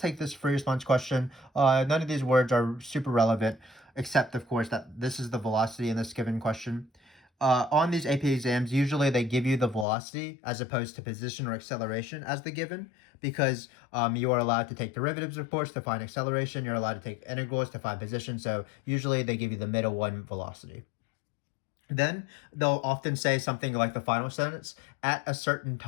take this free response question. None of these words are super relevant, except, of course, that this is the velocity in this given question. On these AP exams, usually they give you the velocity as opposed to position or acceleration as the given, because you are allowed to take derivatives, of course, to find acceleration. You're allowed to take integrals to find position. So usually they give you the middle one, velocity. Then they'll often say something like the final sentence, at a certain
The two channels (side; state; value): right; drops out; at 9.9 s